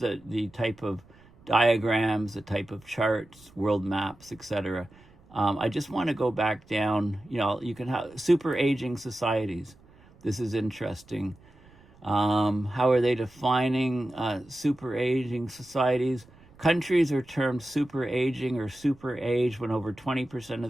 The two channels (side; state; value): right; noise; rumble, 27 dB below the sound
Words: type of diagrams, the type of charts, world maps, etc. I just want to go back down. You can have super aging societies. This is interesting. How are they defining super aging societies? Countries are termed super aging or super age when over 20% of